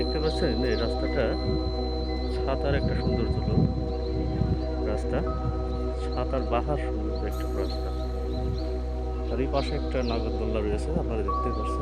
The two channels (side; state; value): both; identical; correlation 1.00